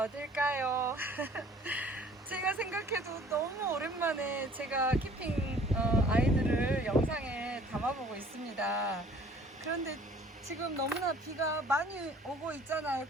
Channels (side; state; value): both; normal; correlation 0.53